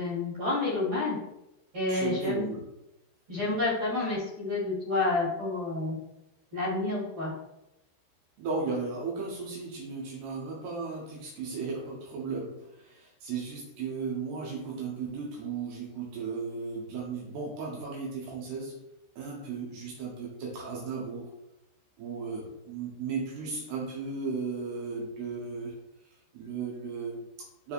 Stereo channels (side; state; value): left; late; 13 ms